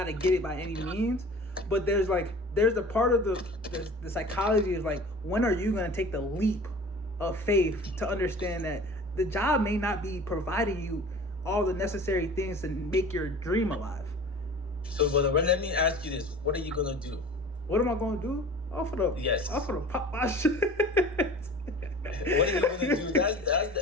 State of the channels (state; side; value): normal; both; correlation 0.41